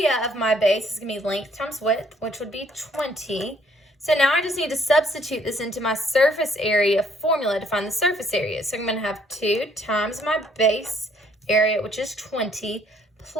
of my base is going to be length times width, which would be 20. So now I just need to substitute this into my surface area formula to find the surface area. So I'm going to have 2 times my base area, which is 20,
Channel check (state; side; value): normal; both; correlation 0.64